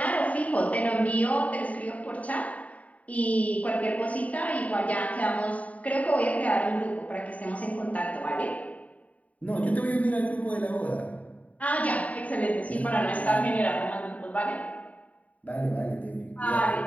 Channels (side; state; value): right; late; 0.069 ms